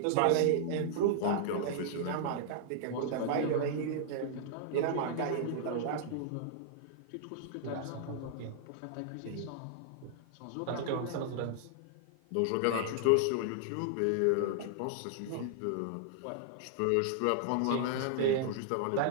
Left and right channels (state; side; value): different; both; correlation -0.01